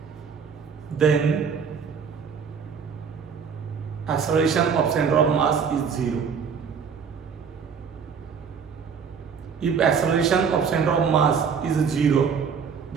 then acceleration of center of mass is 0. If acceleration of center of mass is 0,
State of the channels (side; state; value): left; quieter; 6.4 dB